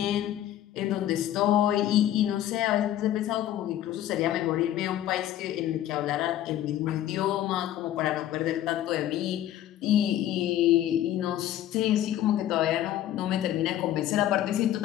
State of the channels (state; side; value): quieter; right; 12.4 dB